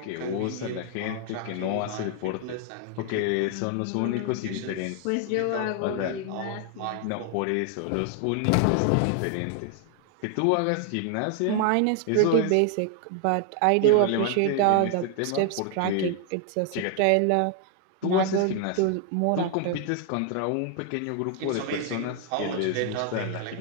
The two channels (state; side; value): different; both; correlation 0.00